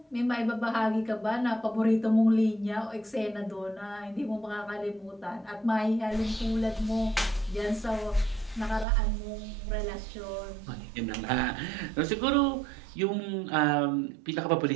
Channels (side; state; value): left; drops out; at 8.8 s